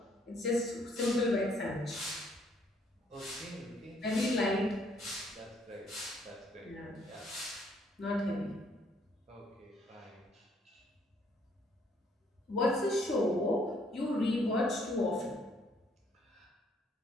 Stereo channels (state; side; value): normal; both; correlation 0.66